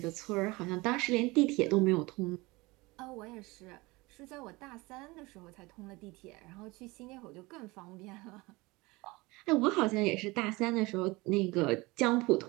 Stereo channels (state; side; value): quieter; left; 23.0 dB